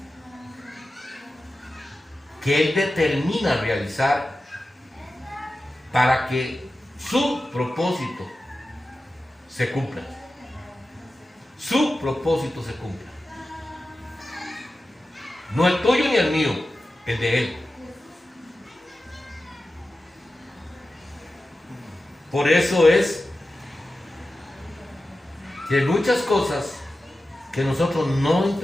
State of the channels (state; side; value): normal; both; correlation 0.93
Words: que Él determina realizar para que su propósito se cumpla. Su propósito se cumpla. No el tuyo ni el mío, el de Él. Por eso es que hay muchas cosas que nosotros no